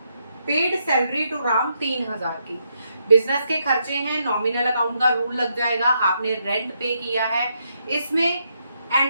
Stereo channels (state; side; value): inverted; both; correlation -0.79